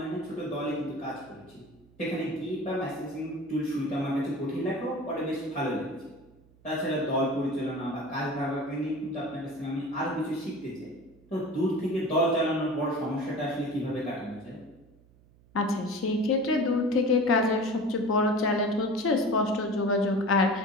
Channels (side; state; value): right; noise; hum, 28 dB below the sound